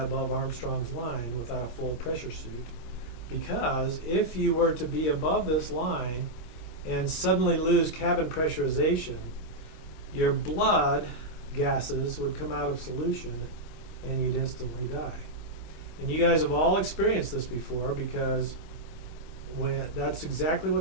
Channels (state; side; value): late; right; 25 ms